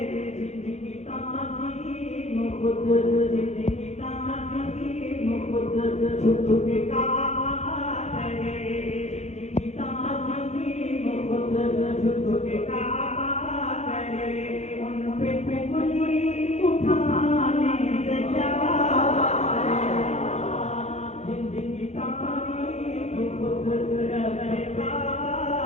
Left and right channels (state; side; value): late; right; 0.33 ms